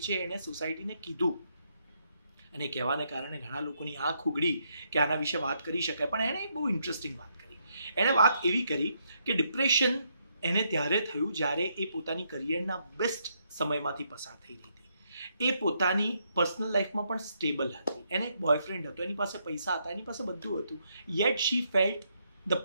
છે. એણે સોસાયટીને કીધું, અને કહેવાને કારણે ઘણા લોકોની આંખ ઉઘડી કે આના વિશે વાત કરી શકાય. પણ એણે બહુ ઇન્ટરેસ્ટિંગ વાત કરી. એણે વાત એવી કરી કે ડિપ્રેશન એને ત્યારે થયું જ્યારે એ પોતાની કરિયરના બેસ્ટ સમયમાંથી પસાર થઈ રહી હતી. એ પોતાની પર્સનલ લાઈફમાં પણ સ્ટેબલ હતી. એને એક બોયફ્રેન્ડ હતો, એની પાસે પૈસા હતા, એની પાસે બધું હતું. Yet she felt the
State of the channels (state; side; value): inverted; both; correlation -0.76